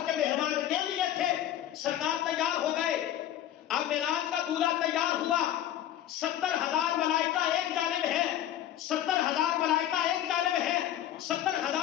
کے مہمان کے لیے تھے، سرکار تیار ہو گئے۔ اب معراج کا دولہا تیار ہوا، 70,000 ملائکہ ایک جانب ہے، 70,000 ملائکہ ایک جانب ہے،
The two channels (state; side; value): quieter; right; 11.7 dB